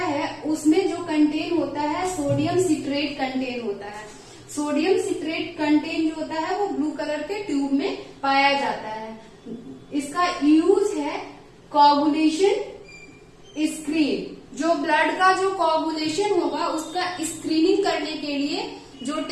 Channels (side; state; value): both; identical; correlation 1.00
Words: उसमें जो कंटेन होता है सोडियम सिट्रेट कंटेन होता है। सोडियम सिट्रेट कंटेन जो होता है वो ब्लू कलर के ट्यूब में पाया जाता है। इसका यूज है कोगुलेशन स्क्रीन, जो ब्लड का जो कोगुलेशन होगा उसका स्क्रीनिंग करने के लिए जो